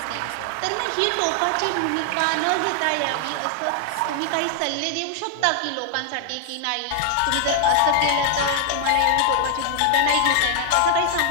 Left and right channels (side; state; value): both; different; correlation 0.00